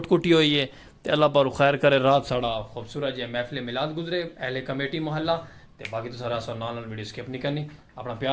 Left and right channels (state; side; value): identical; both; correlation 1.00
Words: کٹی ہوئی ہے تے اللہ پر خیر کرے رات ساڑا خوبصورت جی محفل میلاد گزرے اہل کمیٹی محلہ تے باقی تو سارا سو نال ویڈیو سکپ نہیں کرنی اپنا